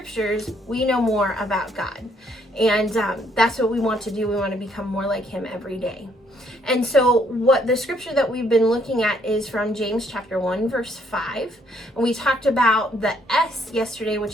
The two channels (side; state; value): both; normal; correlation 0.68